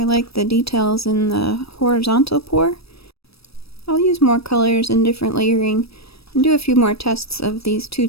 like the details in the horizontal pour. I'll use more colors and different layering and do a few more tests of these two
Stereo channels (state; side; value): late; right; 0.77 ms